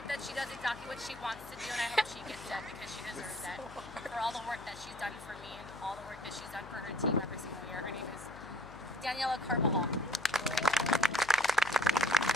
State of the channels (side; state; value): left; noise; hum, 16 dB below the sound